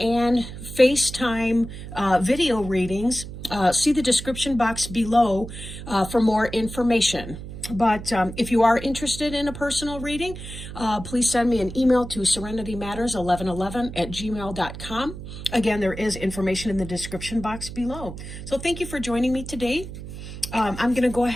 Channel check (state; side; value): noise; right; hum, 11 dB below the sound